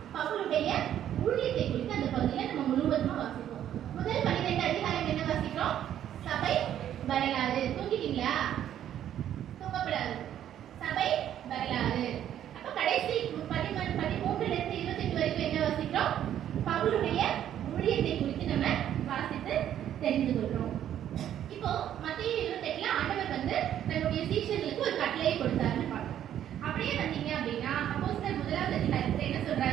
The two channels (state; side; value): quieter; left; 10.8 dB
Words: பவுலுடைய ஊழியத்தை குறித்து அந்த பகுதியில நம்ம முழுவதுமா வாசிப்போம். முதல் 12 அதிகாரம் என்ன வாசிக்கிறோம்? சபை வரலாறு. தூங்கிட்டீங்களா? தூங்கப்படாது. சபை வரலாறு. அப்ப கடைசி 13ல இருந்து 28 வரைக்கும் என்ன வாசிக்கிறோம்? பவுலுடைய ஊழியத்தை குறித்து நம்ம வாசித்து தெரிந்து கொள்றோம். இப்போ மத்தேயு 28ல ஆண்டவர் வந்து தன்னுடைய சீஷர்களுக்கு ஒரு கட்டளையை கொடுத்தாருன்னு பார்க்கிறோம். அப்படியே வந்தீங்க அப்படின்னா அப்போஸ்தலர் 1ஆம் அதிகாரத்துல என்ன